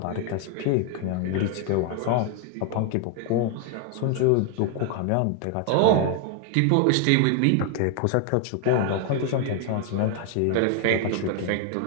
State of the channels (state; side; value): different; both; correlation 0.00